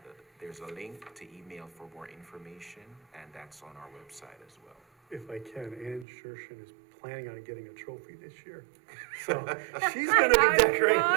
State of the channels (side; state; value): left; drops out; at 6.1 s